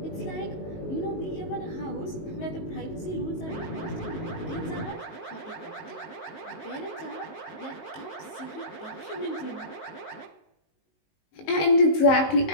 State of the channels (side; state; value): right; late; 19 ms